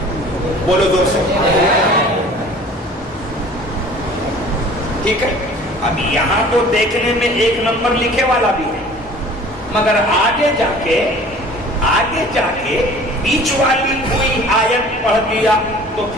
بولو زور سے. ٹھیک ہے. اب یہاں تو دیکھنے میں 1 نمبر لکھے والا بھی ہے, مگر آگے جا کے بیچ والی کوئی آیت پڑھ دیا تو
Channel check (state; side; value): normal; both; correlation 0.47